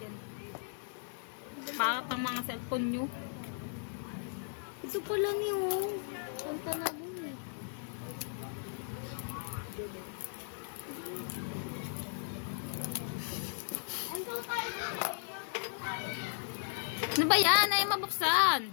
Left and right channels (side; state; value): right; silent; digital silence